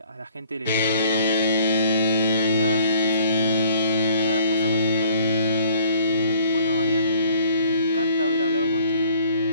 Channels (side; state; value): both; inverted; correlation -0.57